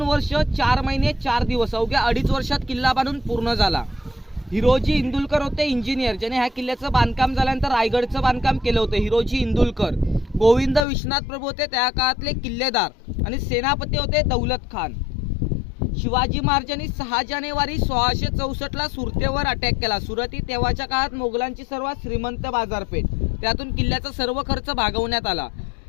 वर्ष 4 महिने 4 दिवस, अवघ्या 2.5 वर्षात किल्ला बांधून पूर्ण झाला। हिरोजी इंदुलकर होते इंजिनियर, ज्याने ह्या किल्ल्याचं बांधकाम झाल्यानंतर रायगडचं बांधकाम केलं होतं। हिरोजी इंदुलकर। गोविंद विश्वनाथ प्रभू होते त्या काळातले किल्लेदार आणि सेनापती होते दौलत खान। शिवाजी महाराजांनी 6 जानेवारी 1664 ला सुरतेवर अटॅक केला। सुरत ही तेव्हाच्या काळात मोगलांची सर्वात श्रीमंत बाजारपेठ, त्यातून किल्ल्याचा सर्व खर्च भागवण्यात आला।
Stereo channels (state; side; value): drops out; right; at 10.9 s